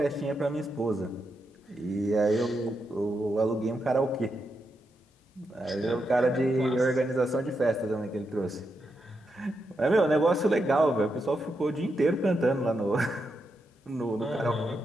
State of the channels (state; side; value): normal; both; correlation 0.84